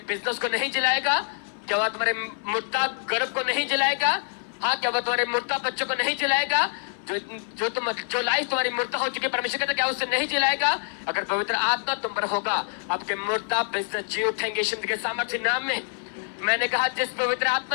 बिजनेस को नहीं जिलाएगा? क्या वो तुम्हारे मुर्दा गर्भ को नहीं जिलाएगा? हाँ, क्या वो तुम्हारे मुर्दा बच्चों को नहीं जिलाएगा? जो लाइफ तुम्हारी मुर्दा हो चुकी है, परमेश्वर कहता क्या उससे नहीं जिलाएगा? अगर पवित्र आत्मा तुम पर होगा, आपके मुर्दा बिजनेस जी उठेंगे यीशु मसीह के सामर्थ्य नाम में। मैंने कहा जिस पवित्र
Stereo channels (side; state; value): right; silent; 61 dB below the other